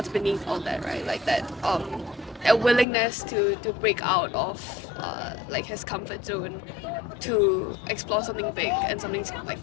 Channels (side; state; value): right; drops out; at 2.9 s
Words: beneath all that, right? Like that a willingness to break out of like his comfort zone, to explore something big and something like